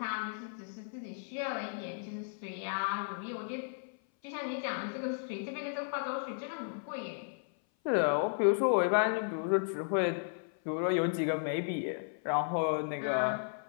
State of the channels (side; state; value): right; silent; 55 dB below the other